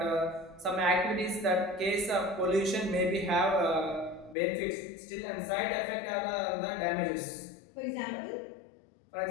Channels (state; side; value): drops out; right; at 4.4 s